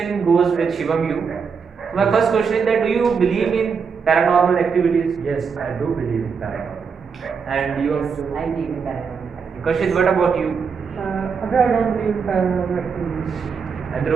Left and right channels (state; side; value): quieter; left; 5.8 dB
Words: goes with Shivam you. So my first question is that do you believe in paranormal activities? Yes, I do believe in paranormal. And you Yes, I believe in paranormal. Kashid, what about you? I don't believe in paranormal activities. And